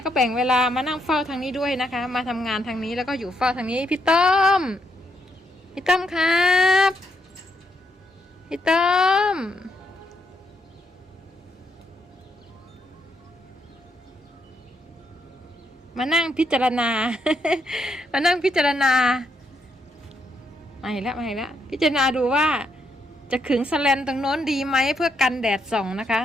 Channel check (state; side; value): normal; both; correlation 0.77